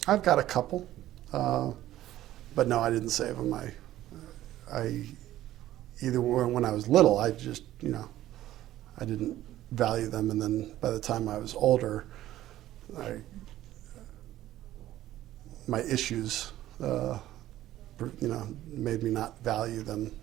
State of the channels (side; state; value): left; quieter; 14.0 dB